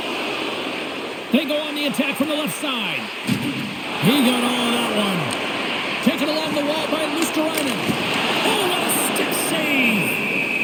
They go on the attack from the left side. He got all of that one. Taken along the wall by Luosterainen. Oh, what a stick save!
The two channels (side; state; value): both; identical; correlation 1.00